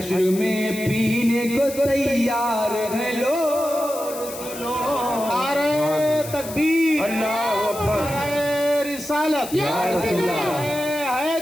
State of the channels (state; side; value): noise; left; hiss, 12 dB below the sound